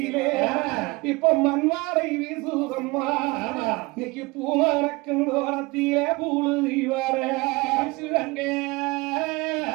இப்ப மண்வாரை வீசுதம்மா, இன்னைக்கு பூமரக்கும் ஓரத்திலே பூழுதி வர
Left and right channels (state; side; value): quieter; left; 24.1 dB